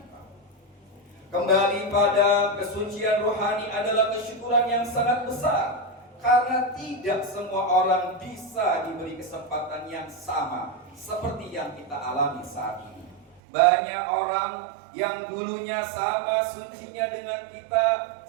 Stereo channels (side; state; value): left; drops out; at 13.4 s